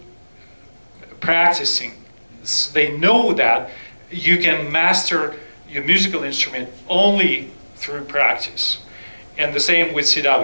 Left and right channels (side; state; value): both; inverted; correlation -1.00